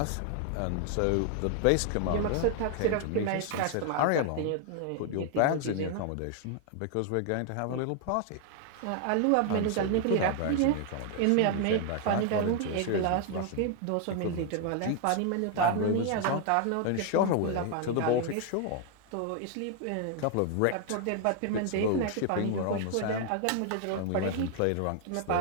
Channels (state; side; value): different; both; correlation 0.00